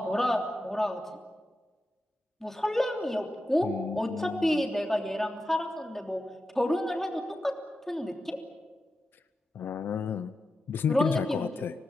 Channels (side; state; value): both; normal; correlation 0.90